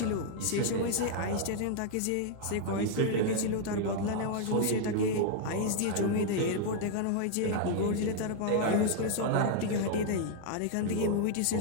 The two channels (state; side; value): different; both; correlation 0.00